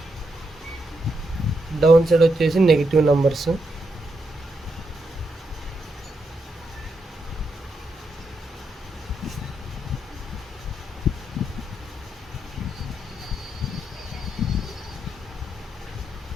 డౌన్ సైడ్ వచ్చేసి నెగిటివ్ నెంబర్స్.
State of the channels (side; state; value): both; normal; correlation 0.81